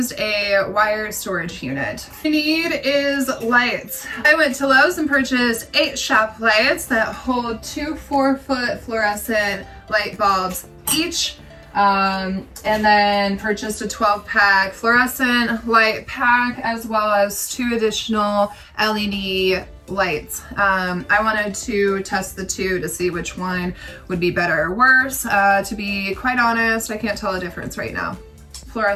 a wire storage unit. What you need is lights. I went to Lowe's and purchased 8 shop lights that hold 2 4-foot fluorescent light bulbs each. And then purchased a 12-pack fluorescent light pack, as well as 2 additional LED lights. I wanted to test the 2 to see which one would be better or worse. To be quite honest, I can't tell a difference right now.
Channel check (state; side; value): identical; both; correlation 1.00